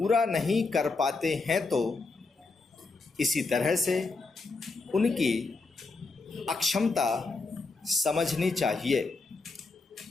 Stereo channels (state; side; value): quieter; right; 3.8 dB